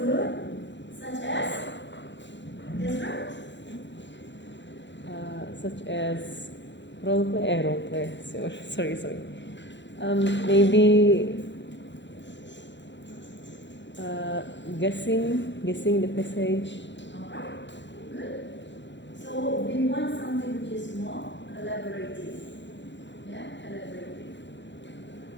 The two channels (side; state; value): right; late; 0.53 ms